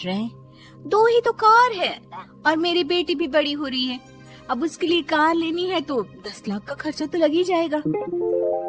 रहे हैं। 2 ही तो कार है और मेरी बेटी भी बड़ी हो रही है। अब उसके लिए कार लेनी है तो 10 लाख का खर्चा तो लग ही जाएगा।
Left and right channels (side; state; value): both; identical; correlation 1.00